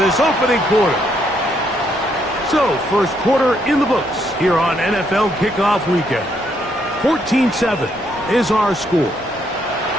opening quarter. So, first quarter in the books here on NFL Kickoff Weekend. 14-7 is our score.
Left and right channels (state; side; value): normal; both; correlation 0.73